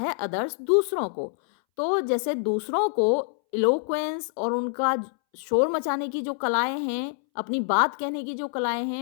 अदर्स दूसरों को। तो जैसे दूसरों को इलोक्वेंस और उनका शोर मचाने की जो कलाएं हैं, अपनी बात कहने की जो कलाएं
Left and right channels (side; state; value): right; silent; 61 dB below the other